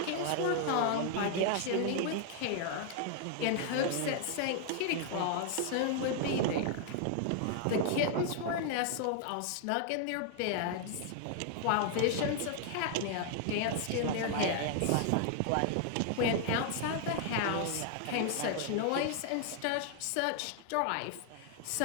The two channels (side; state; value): both; different; correlation 0.00